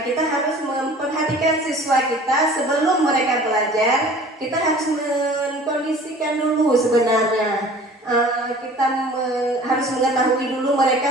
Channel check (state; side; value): normal; both; correlation 0.46